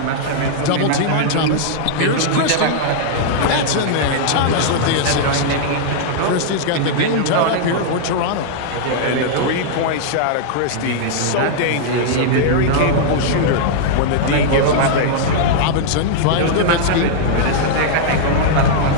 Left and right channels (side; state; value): both; different; correlation -0.01